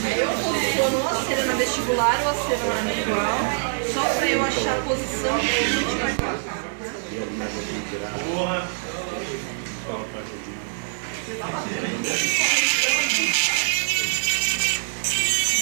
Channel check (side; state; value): left; silent; digital silence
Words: Aí eu posiciono ou a cera na vestibular ou a cera na igual, só pra eu achar a posição que a gente vai colocar.